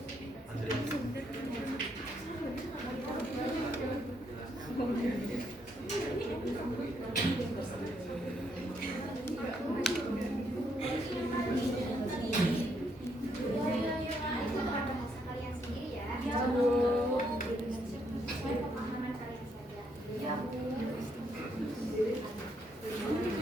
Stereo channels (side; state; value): both; normal; correlation 0.74